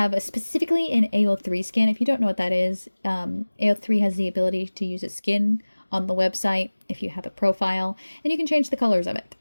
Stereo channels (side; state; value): both; inverted; correlation -1.00